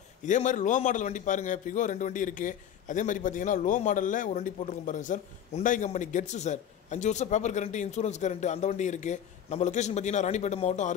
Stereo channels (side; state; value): right; quieter; 9.5 dB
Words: இதே மாதிரி லோ மாடல் வண்டி பாருங்கள். பிகோ 2 வண்டி இருக்குது. அதே மாதிரி பார்த்தீங்கன்னா லோ மாடலில் ஒரு வண்டி போட்டிருக்கோம் பாருங்கள் சார். உண்டாய் கம்பெனி கெட்ஸு சார். 5 வருஷம் பேப்பர் கரண்ட்டு, இன்சூரன்ஸ் கரண்ட்டு, அந்த வண்டி இருக்குது. நம்ம லொக்கேஷன் பார்த்தீங்கன்னா ராணிப்பேட்டை மாவட்டம்